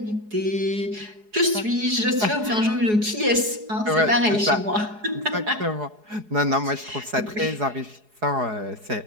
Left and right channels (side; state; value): left; late; 4.8 ms